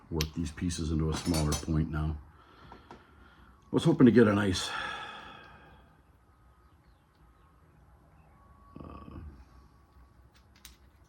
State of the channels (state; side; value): identical; both; correlation 1.00